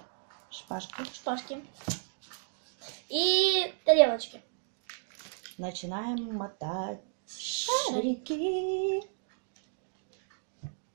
шпажки и тарелочки. Начинаем мотать шарики.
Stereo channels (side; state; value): left; silent; digital silence